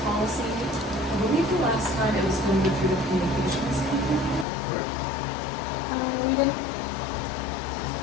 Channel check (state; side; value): drops out; right; at 4.5 s